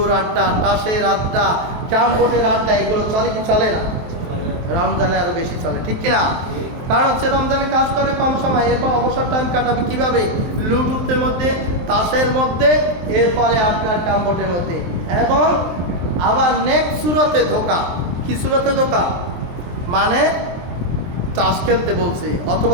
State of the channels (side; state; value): left; late; 23 ms